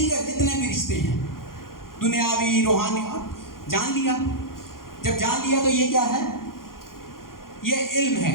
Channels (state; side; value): late; right; 0.91 ms